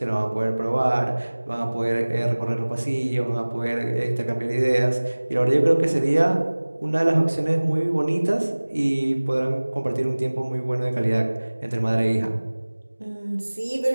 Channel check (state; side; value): inverted; both; correlation -1.00